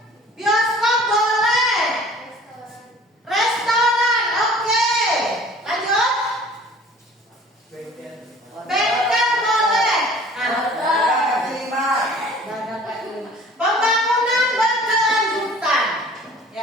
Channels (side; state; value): both; normal; correlation 0.48